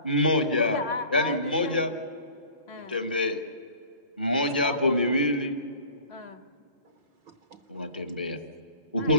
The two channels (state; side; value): inverted; both; correlation -0.46